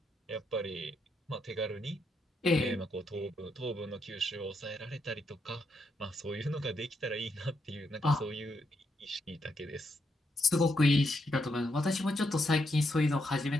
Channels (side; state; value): both; normal; correlation 0.79